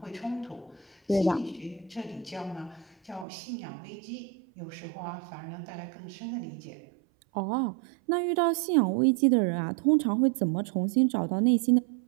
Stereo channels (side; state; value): left; drops out; at 3.2 s